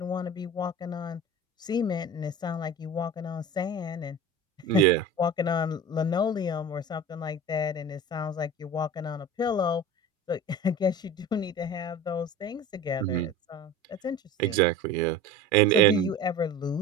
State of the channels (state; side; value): normal; both; correlation 0.34